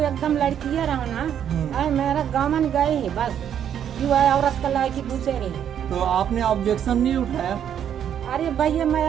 एकदम लड़की रहा ना, मेरा गाँव गए है बस, क्यों है औरत का लाए की पूछे रही। तो आपने ऑब्जेक्शन नहीं उठाया? अरे भैया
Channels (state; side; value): quieter; left; 9.3 dB